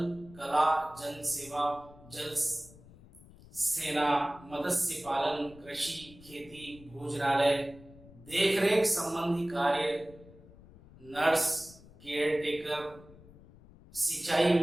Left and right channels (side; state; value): left; noise; rumble, 22 dB below the sound